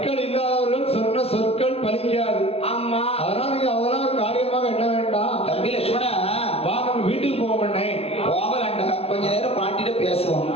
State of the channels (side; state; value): right; late; 0.29 ms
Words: இல்லாதவர்கள் சொன்ன சொற்கள் பலிக்காது. ஆமா அதனால நீங்க அதெல்லாம் ஒரு காரியமாக என்ன வேண்டாம். தம்பி லட்சுமணா வா நம்ம வீட்டுக்கு போவோம்ண்ணே. போகலாண்டா, கொஞ்ச நேரம் பாட்டிட்ட பேசுவோம்.